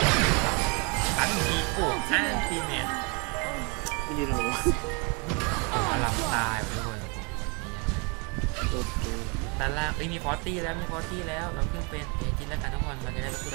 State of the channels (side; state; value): left; quieter; 32.5 dB